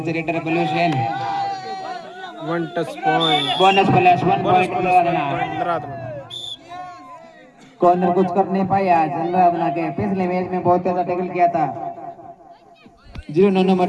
raider Balveer Sen 1 touch point. Bonus plus 1 bonus point plus Anuradhana. Corner कुछ कर नहीं पाया आज अनुराधना के। पिछले मैच में बहुत अच्छा टैकल किया था 09 नंबर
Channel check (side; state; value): both; identical; correlation 1.00